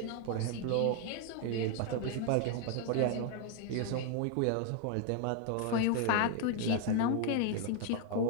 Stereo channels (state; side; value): different; both; correlation 0.00